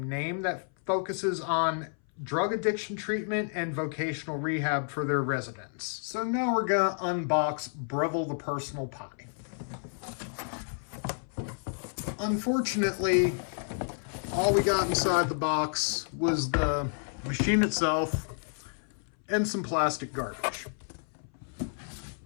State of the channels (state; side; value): silent; right; 57 dB below the other